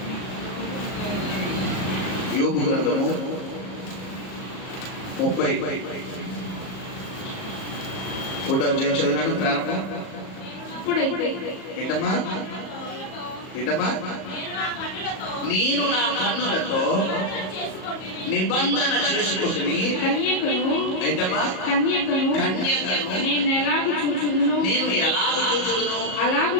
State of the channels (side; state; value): right; late; 37 ms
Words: యోబు గ్రంథము 30 ఫోటో చదివినాడు ప్రారంభం. ఏంటమ్మా ఏంటమ్మా? నేను నా కన్నులతో నిబంధన చేసుకుంటుని. ఏంటమ్మా? కన్యకను నేను ఎలాగ చూచుదును అలాగు